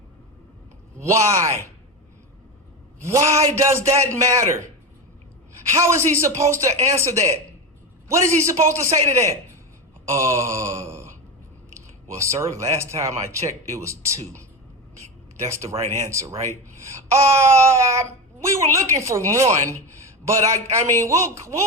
Why? Why does that matter? How is he supposed to answer that? What is he supposed to say to that? Well, sir, last time I checked, it was 2. That's the right answer, right? We were looking for 1, but I mean,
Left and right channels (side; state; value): both; normal; correlation 0.20